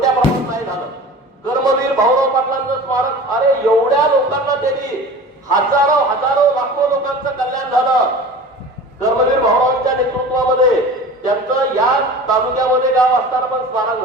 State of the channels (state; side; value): normal; both; correlation 0.38